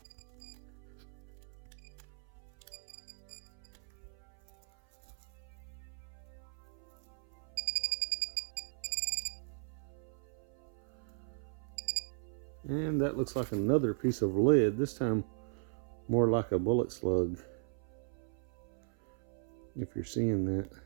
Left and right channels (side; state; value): left; silent; 53 dB below the other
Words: and that looks like another piece of lead, this time more like a bullet slug, if you're seeing that.